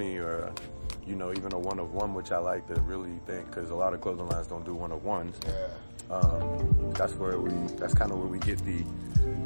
or, you know, even a 1 of 1, which I like to really think, because a lot of clothing lines don't do 1 of 1s. That's kind of where we get the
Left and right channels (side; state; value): both; inverted; correlation -1.00